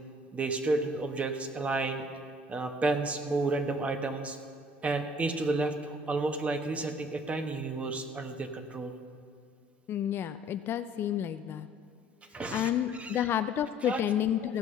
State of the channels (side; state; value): both; normal; correlation 0.55